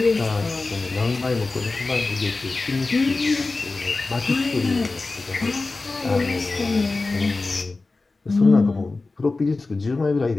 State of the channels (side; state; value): right; quieter; 3.5 dB